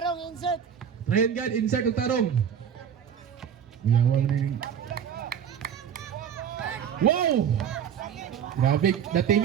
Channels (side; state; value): left; quieter; 8.3 dB